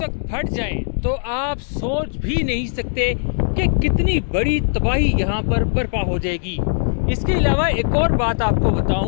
फट जाए तो आप सोच भी नहीं सकते कि कितनी बड़ी तबाही यहाँ पर बर्पा हो जाएगी। इसके अलावा एक और बात आपको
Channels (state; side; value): silent; right; digital silence